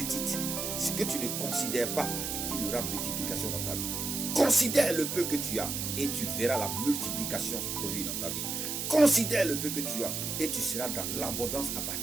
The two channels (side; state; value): right; noise; hiss, 3 dB below the sound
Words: ce que tu ne considères pas, qu'il y aura multiplication dans ta vie. Considère le peu que tu as et tu verras la multiplication se produire dans ta vie. Considère le peu que tu as et tu seras dans l'abondance à